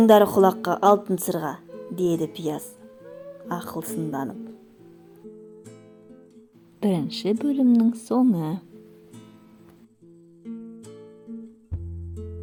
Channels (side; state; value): both; identical; correlation 1.00